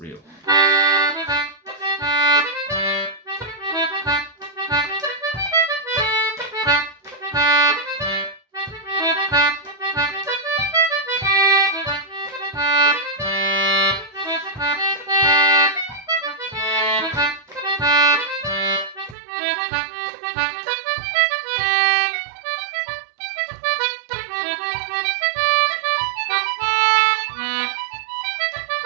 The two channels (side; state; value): left; drops out; at 19.2 s